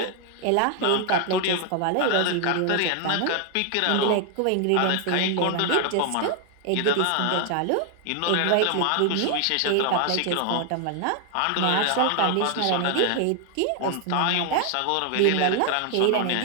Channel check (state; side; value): different; both; correlation 0.00